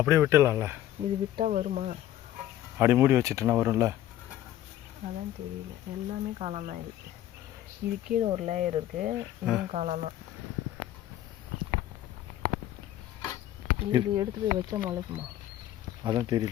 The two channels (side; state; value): right; quieter; 12.8 dB